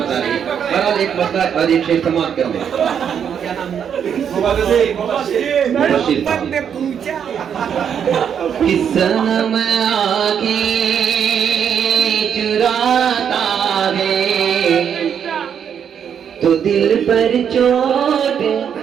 रही है। बहरहाल एक पत्ता और एक शेर समाप्त कर दे। सनम आगे चुराता है तो दिल पर चोट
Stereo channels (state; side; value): quieter; left; 8.1 dB